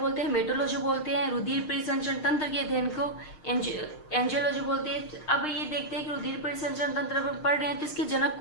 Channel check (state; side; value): late; right; 6.5 ms